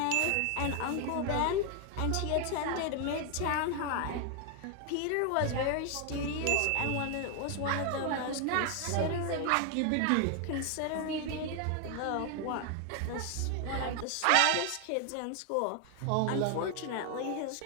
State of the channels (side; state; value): both; different; correlation 0.01